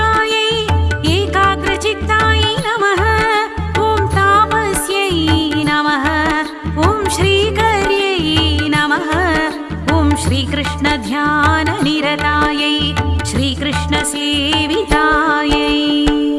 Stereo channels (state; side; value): identical; both; correlation 1.00